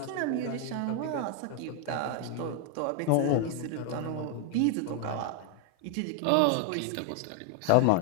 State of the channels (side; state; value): both; different; correlation 0.00